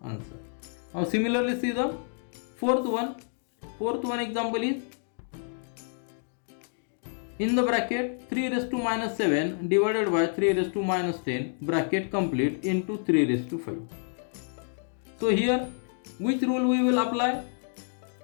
Now similarly see the fourth one. Fourth one example is in the bracket 3 raised to minus 7 divided by 3 raised to minus 10 bracket complete into 3 raised to 5. So here which rule we will apply?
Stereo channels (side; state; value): right; silent; 59 dB below the other